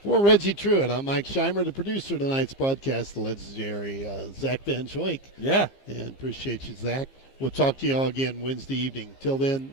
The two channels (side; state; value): right; late; 15 ms